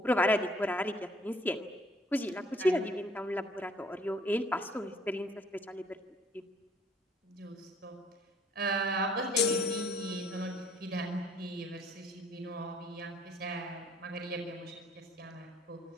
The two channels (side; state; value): both; normal; correlation 0.59